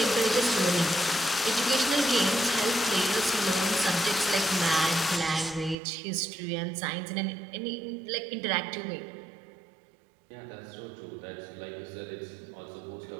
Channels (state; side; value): drops out; left; at 5.8 s